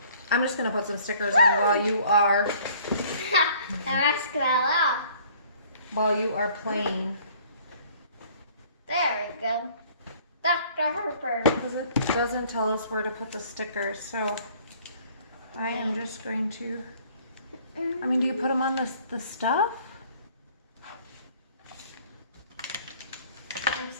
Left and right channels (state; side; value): inverted; both; correlation -0.55